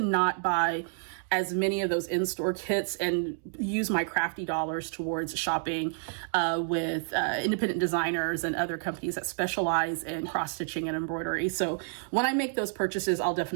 not buy as many of those in-store kits and use my crafty dollars towards shopping with independent designers and other companies that specialize in cross-stitching and embroidery. So when I make those purchases, I'll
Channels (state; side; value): silent; left; 58 dB below the other